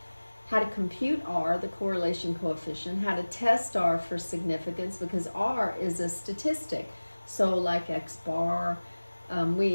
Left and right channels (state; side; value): inverted; both; correlation -1.00